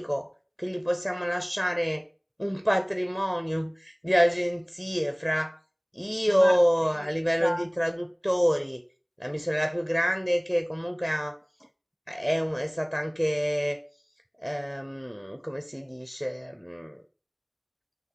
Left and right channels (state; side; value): identical; both; correlation 1.00